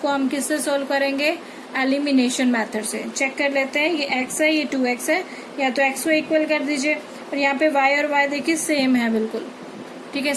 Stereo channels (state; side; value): identical; both; correlation 1.00